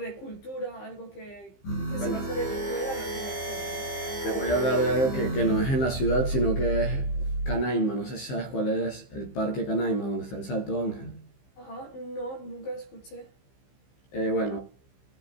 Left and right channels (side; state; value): right; late; 15 ms